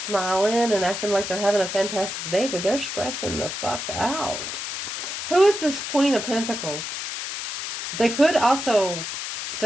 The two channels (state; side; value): noise; left; hiss, 5 dB below the sound